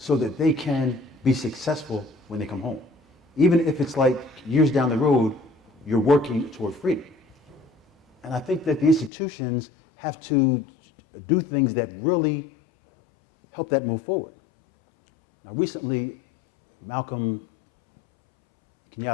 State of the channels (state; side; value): drops out; right; at 9.1 s